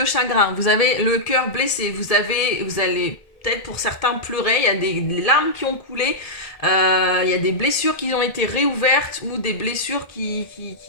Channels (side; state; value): right; late; 1.7 ms